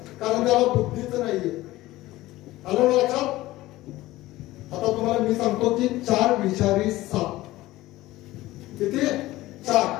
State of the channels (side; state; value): right; quieter; 17.3 dB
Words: कारण त्याला बुद्धीच नाहीये. आलं लक्षात. आता तुम्हाला मी सांगतो की 4 विषारी साप. किती?